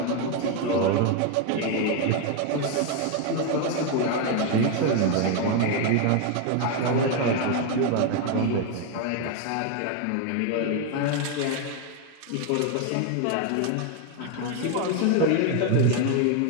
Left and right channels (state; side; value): different; both; correlation 0.01